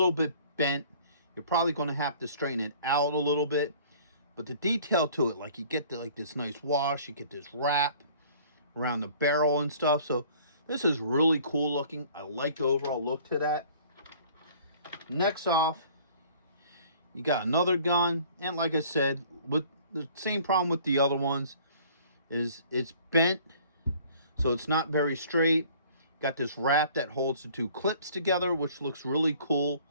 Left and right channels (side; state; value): both; inverted; correlation -0.52